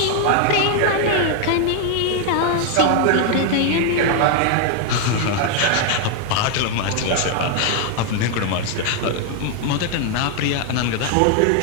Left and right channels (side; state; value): both; different; correlation 0.00